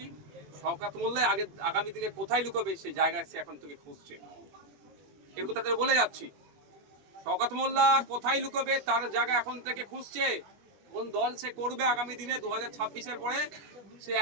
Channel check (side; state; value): left; late; 21 ms